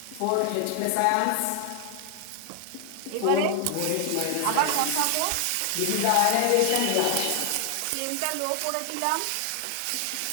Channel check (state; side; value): different; both; correlation 0.00